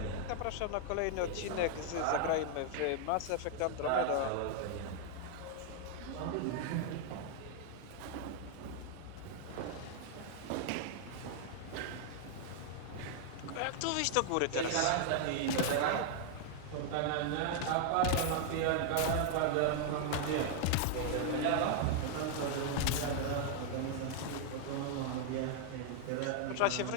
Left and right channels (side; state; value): both; different; correlation 0.00